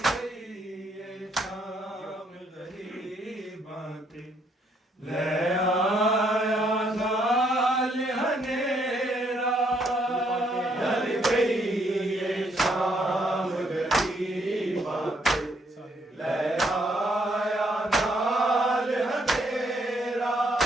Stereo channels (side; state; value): both; normal; correlation 0.71